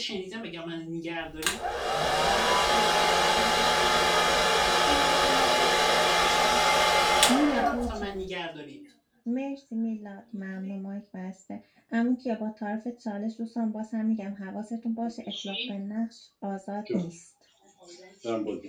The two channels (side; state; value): both; identical; correlation 1.00